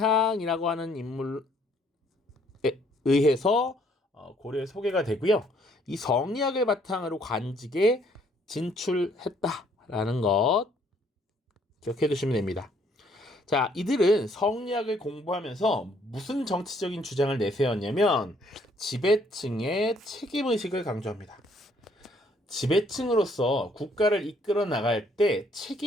하는 인물에 의해서 고려에 소개가 되고요. 이 성리학을 바탕으로 관직에 진출했다라는 것 기억해 두시면 됩니다. 자, 이들은 성리학을 공부하면서 무슨 정치적인 주장을 내세웠냐면 지배층의 책임의식을 강조합니다. 지배층으로서 국가를 이끌어 나갈 때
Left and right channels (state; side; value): normal; both; correlation 0.65